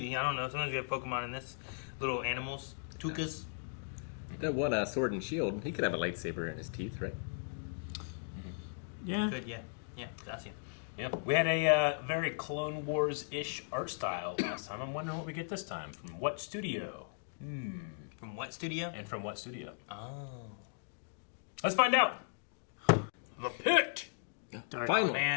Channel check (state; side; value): silent; right; digital silence